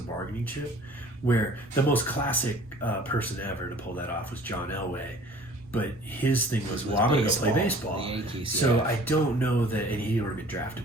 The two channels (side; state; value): both; normal; correlation 0.50